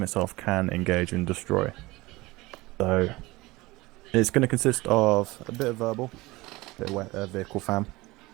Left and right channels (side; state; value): left; quieter; 21.1 dB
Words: itself can engage and destroy. So, it's going to consist of a bit of verbal, a bit of vehicle fam.